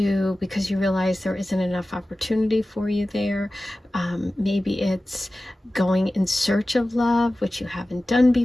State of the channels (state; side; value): normal; both; correlation 0.96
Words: you realize there isn't enough opportunity for you there. Maybe it's going in search of love, which you haven't done